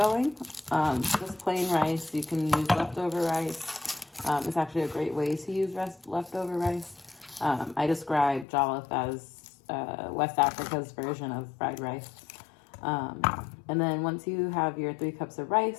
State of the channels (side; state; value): right; drops out; at 8.5 s